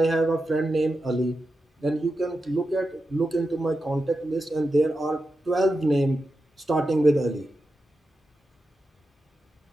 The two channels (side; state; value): both; normal; correlation 0.89